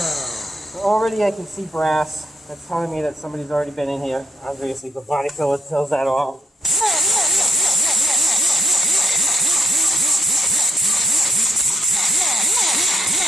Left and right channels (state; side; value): normal; both; correlation 0.75